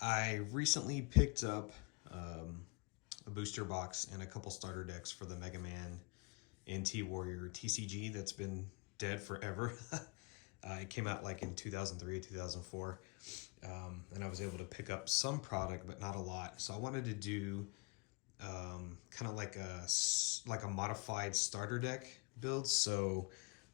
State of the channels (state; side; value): quieter; right; 30.1 dB